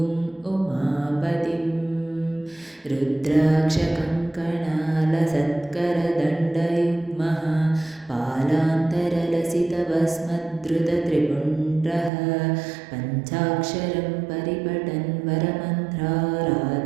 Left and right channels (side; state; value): left; drops out; at 12.1 s